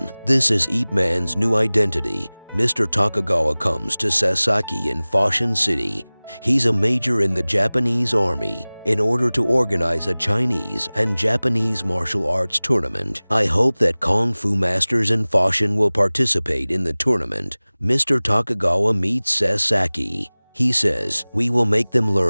This is Ip Man's new identity. Mr. Takagawa comes to Sasaki in Foshan City. He's a major in the Japanese army. In order to organize a Chinese and Japanese martial arts tournament, I hope that Kung Fu masters in Foshan will participate in the tournament. Mr. Takagawa meets Sasaki. He says, "We will make them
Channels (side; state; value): both; inverted; correlation -1.00